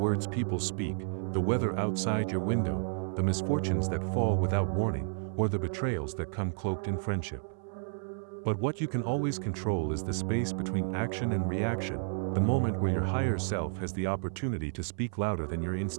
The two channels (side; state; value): left; silent; 56 dB below the other